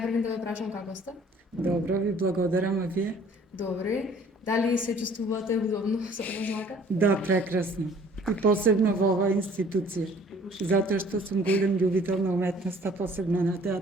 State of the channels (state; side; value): normal; both; correlation 0.54